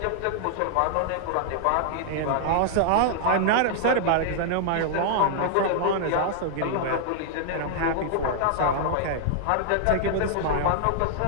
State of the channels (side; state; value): both; different; correlation -0.01